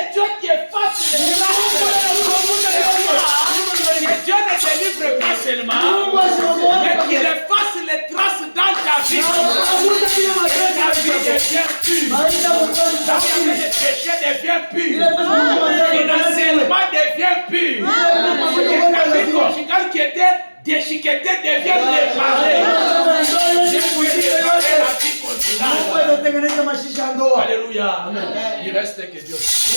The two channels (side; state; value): both; inverted; correlation -1.00